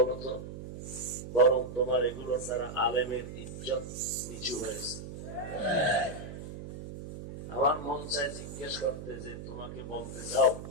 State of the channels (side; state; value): right; noise; hum, 10 dB below the sound